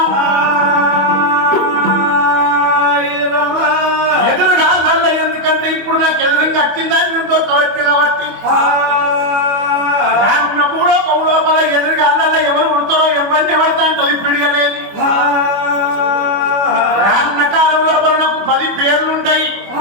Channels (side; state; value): left; late; 25 ms